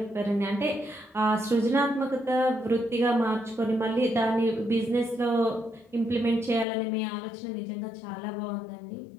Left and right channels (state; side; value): drops out; right; at 6.7 s